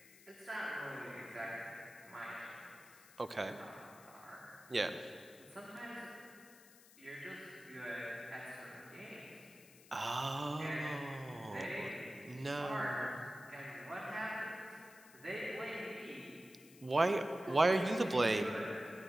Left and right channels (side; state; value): left; noise; hiss, 22 dB below the sound